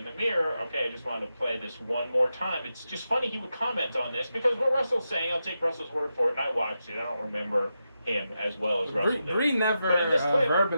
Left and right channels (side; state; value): both; inverted; correlation -0.88